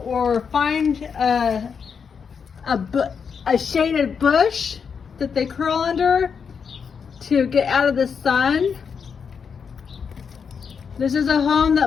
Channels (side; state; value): right; quieter; 6.3 dB